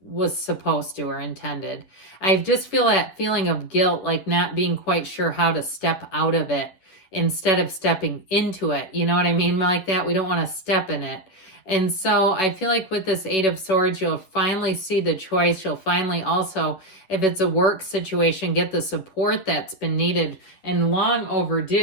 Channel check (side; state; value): right; late; 11 ms